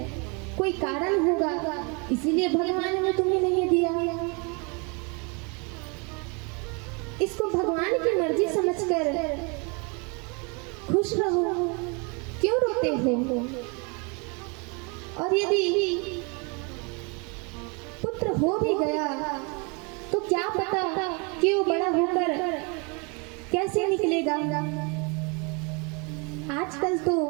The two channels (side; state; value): left; quieter; 32.0 dB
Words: कोई कारण होगा इसीलिए भगवान ने तुम्हें नहीं दिया। इसको भगवान की मर्जी समझकर खुश रहो, क्यों रोते हो। और यदि पुत्र हो भी गया तो क्या पता कि वो बड़ा होकर कैसे निकलेगा। आजकल तो